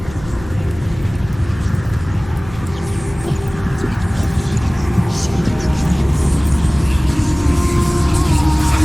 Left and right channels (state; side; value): noise; left; hum, 16 dB below the sound